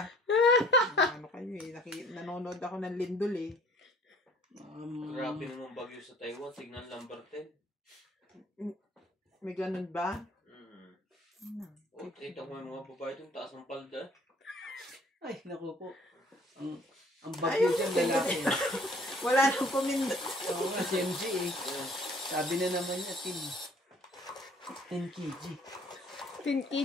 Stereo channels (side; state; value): both; normal; correlation 0.55